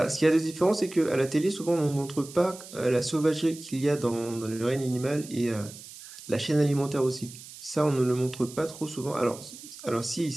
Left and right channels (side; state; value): right; noise; hiss, 16 dB below the sound